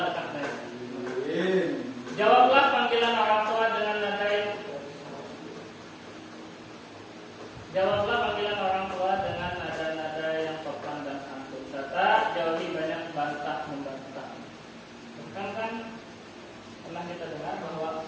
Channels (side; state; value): both; identical; correlation 1.00